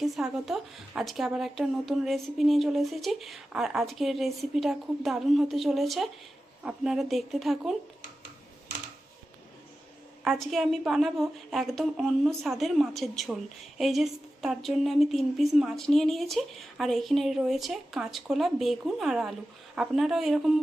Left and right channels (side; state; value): both; normal; correlation 0.93